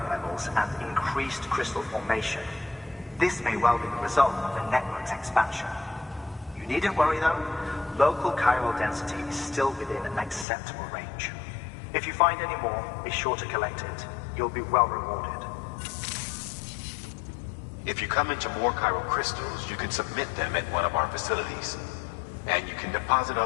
levels and increased crystal formation. This may well be the result of the network's expansion. You needn't worry though. Local chiral density is still within an acceptable range. If you find any more, be sure to collect it. You'll be well rewarded. If you come into more chiral crystals, you can submit them at one of our facilities. And you can deposit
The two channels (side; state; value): right; drops out; at 10.5 s